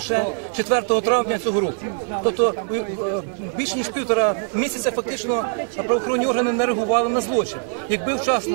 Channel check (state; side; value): silent; left; 58 dB below the other